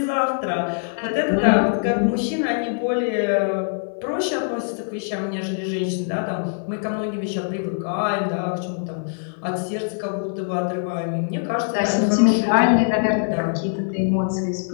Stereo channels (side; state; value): right; silent; digital silence